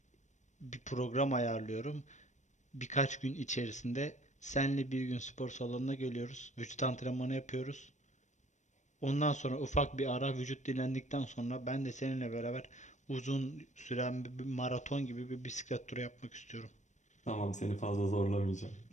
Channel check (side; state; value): right; late; 0.35 ms